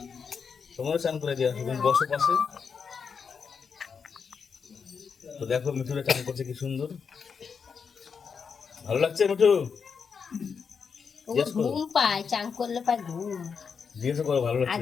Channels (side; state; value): right; quieter; 6.1 dB